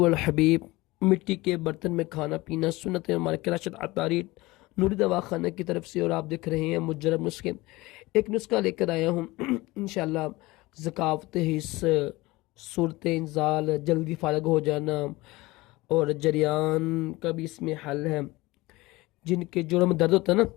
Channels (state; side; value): quieter; right; 20.8 dB